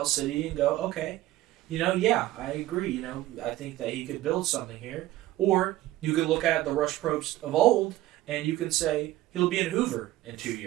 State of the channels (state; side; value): quieter; left; 15.6 dB